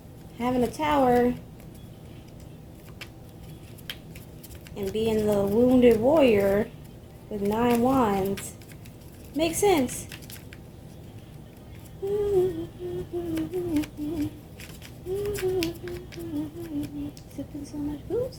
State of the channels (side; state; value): both; identical; correlation 1.00